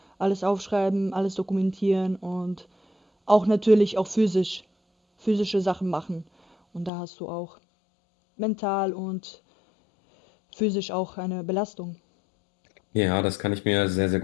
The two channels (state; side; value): drops out; right; at 6.9 s